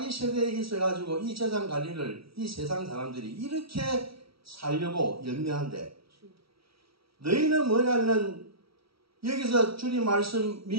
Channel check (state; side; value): late; left; 0.75 ms